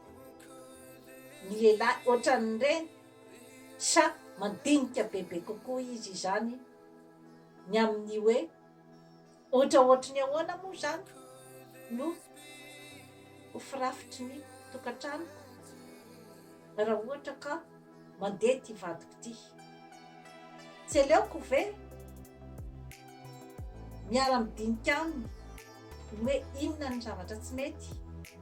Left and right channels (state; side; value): identical; both; correlation 1.00